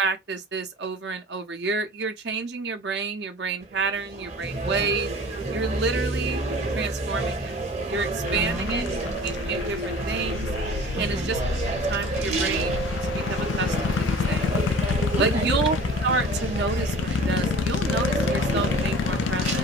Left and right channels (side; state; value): both; normal; correlation 0.44